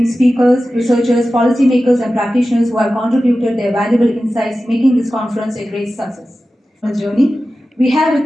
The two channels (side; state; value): both; normal; correlation 0.94